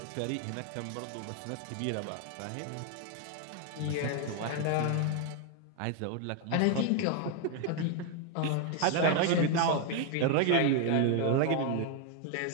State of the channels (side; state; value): both; different; correlation 0.01